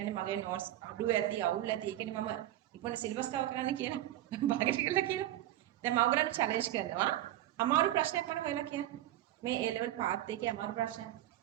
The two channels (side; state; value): left; quieter; 13.8 dB